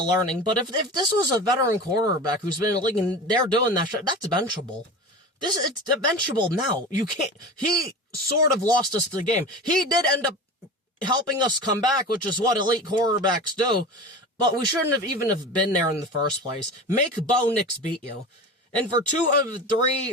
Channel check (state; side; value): normal; both; correlation 0.31